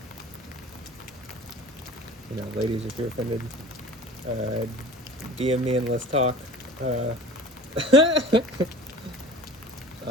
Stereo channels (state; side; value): normal; both; correlation 0.41